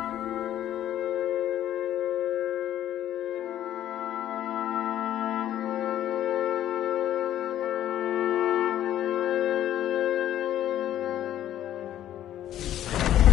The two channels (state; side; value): quieter; right; 12.0 dB